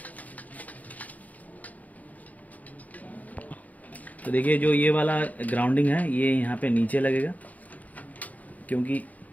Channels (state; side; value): late; right; 0.074 ms